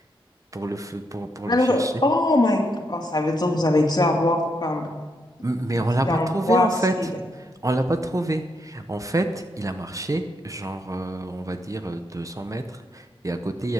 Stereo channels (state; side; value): normal; both; correlation 0.78